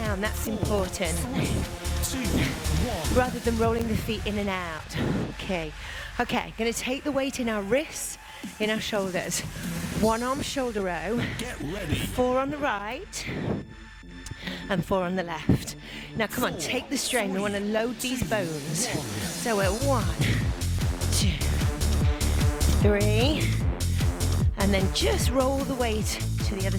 that's important. Rather than rolling the feet in and out. Okay, gonna take the weight in our wrists, in our shoulders. One arm shoulder row. Get ready. 4 on the right and 4 on the left. Now come on, take the strain. We want to load these bones. So we're 1, 2, 3, and then just roll the weight to the other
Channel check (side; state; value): both; identical; correlation 1.00